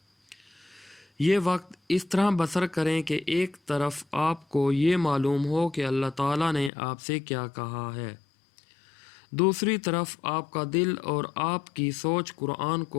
یہ وقت اس طرح بسر کریں کہ ایک طرف آپ کو یہ معلوم ہو کہ اللہ تعالیٰ نے آپ سے کیا کہا ہے، دوسری طرف آپ کا دل اور آپ کی سوچ قرآن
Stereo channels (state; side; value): drops out; right; at 6.7 s